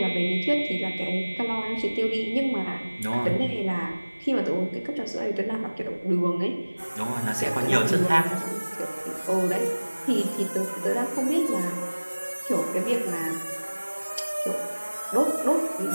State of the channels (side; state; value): both; inverted; correlation -1.00